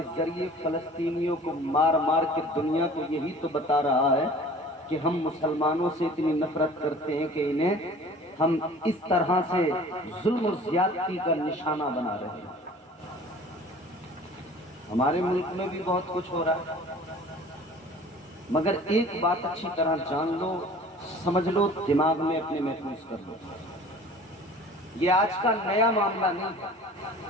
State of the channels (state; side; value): normal; both; correlation 0.46